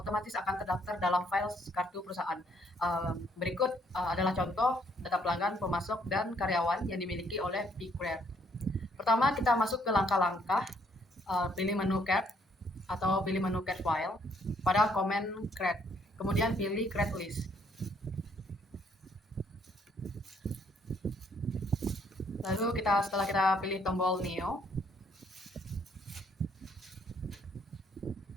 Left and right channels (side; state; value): both; normal; correlation 0.67